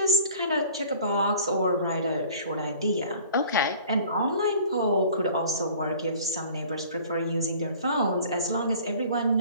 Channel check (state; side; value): inverted; both; correlation -0.48